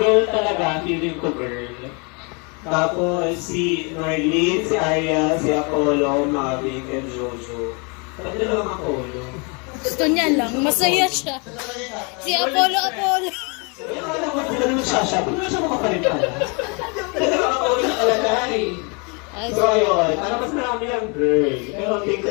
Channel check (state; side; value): quieter; right; 33.0 dB